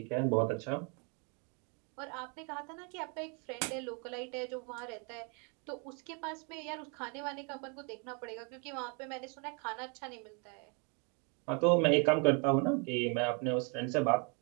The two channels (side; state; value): left; quieter; 35.8 dB